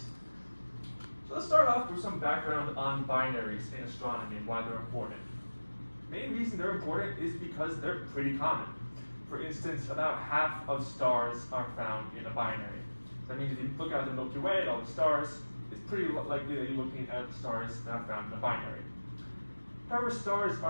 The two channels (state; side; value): inverted; both; correlation -1.00